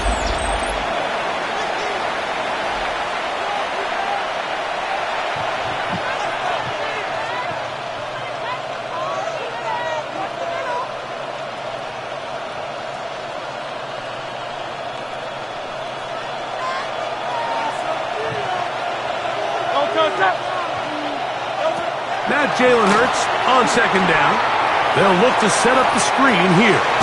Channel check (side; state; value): both; identical; correlation 1.00